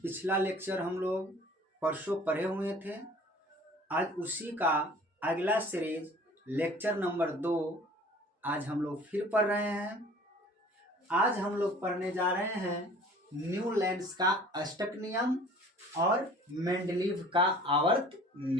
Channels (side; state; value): both; normal; correlation 0.48